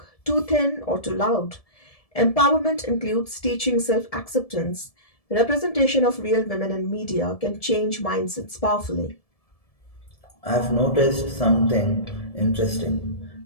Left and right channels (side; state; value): right; late; 1.7 ms